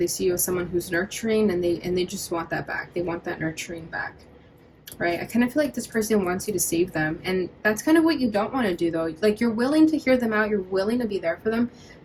see you as someone who's nurturing, and they just want that back. They want that nurturing back, right? I kind of feel like this person wants you to save them, and that's kind of what you don't want to do though. Like, you're willing to hear them out, you're willing to be there for them,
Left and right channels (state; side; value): identical; both; correlation 1.00